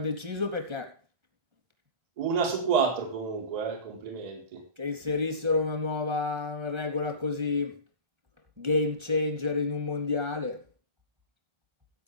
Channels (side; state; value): left; late; 1.3 ms